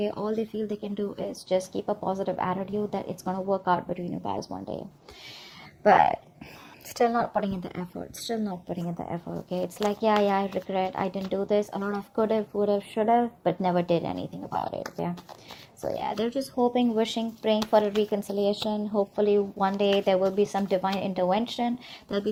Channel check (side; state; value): both; identical; correlation 1.00